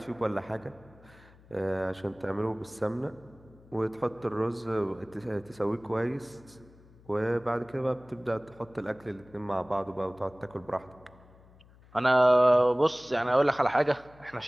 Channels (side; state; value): left; noise; hum, 25 dB below the sound